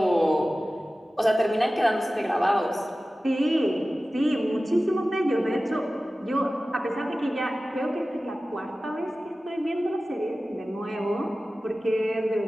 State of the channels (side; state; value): both; normal; correlation 0.96